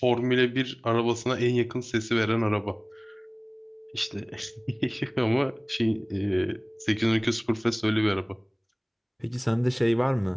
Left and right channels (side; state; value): both; identical; correlation 1.00